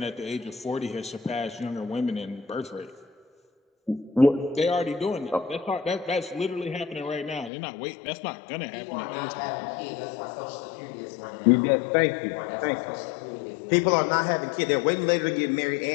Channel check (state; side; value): drops out; right; at 7.5 s